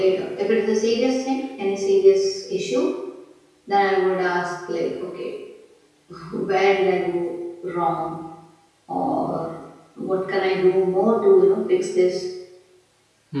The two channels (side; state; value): both; identical; correlation 1.00